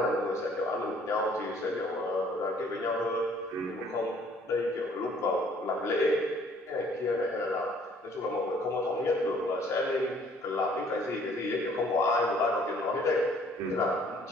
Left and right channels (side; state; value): both; normal; correlation 0.59